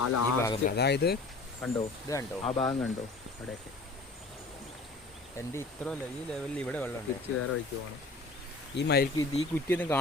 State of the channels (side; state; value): right; quieter; 3.3 dB